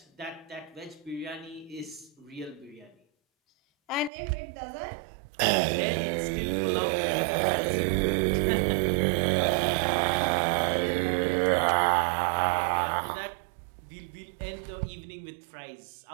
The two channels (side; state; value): left; drops out; at 4.1 s